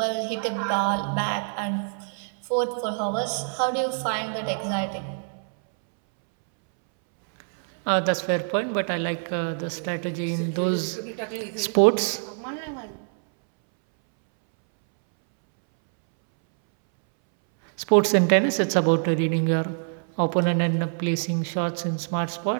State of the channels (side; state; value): left; silent; 62 dB below the other